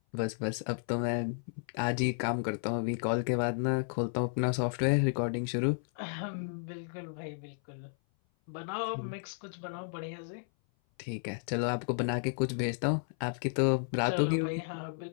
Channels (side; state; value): right; silent; 56 dB below the other